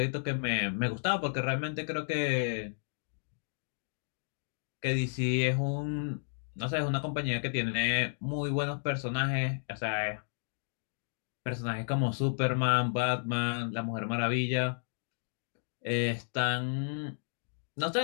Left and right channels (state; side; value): silent; right; digital silence